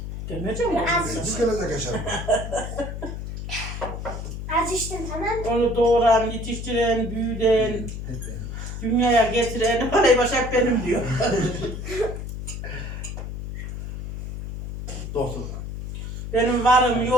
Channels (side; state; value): left; noise; hum, 7 dB below the sound